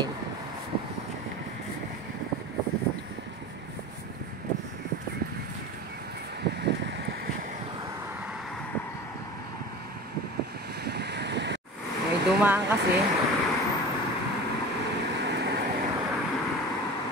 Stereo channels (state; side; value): normal; both; correlation 0.34